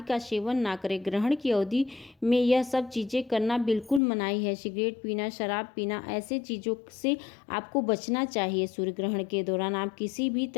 का सेवन ना करें। ग्रहण की अवधि में यह सब चीज़ें करना बिल्कुल मनाही है। सिगरेट पीना, शराब पीना, ऐसे चीज़ों से आपको बचना चाहिए। सूर्य ग्रहण के दौरान आप किसी भी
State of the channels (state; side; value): drops out; right; at 4.0 s